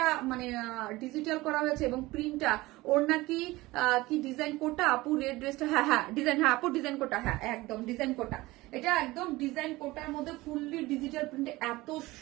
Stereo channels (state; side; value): quieter; left; 19.9 dB